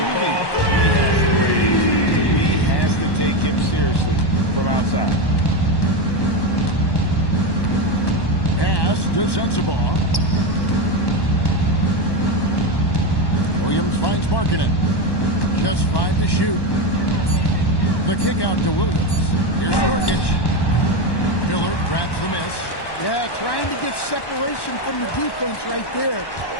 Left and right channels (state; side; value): late; right; 1.1 ms